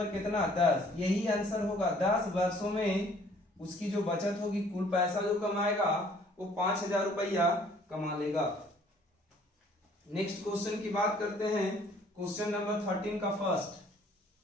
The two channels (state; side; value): normal; both; correlation 0.58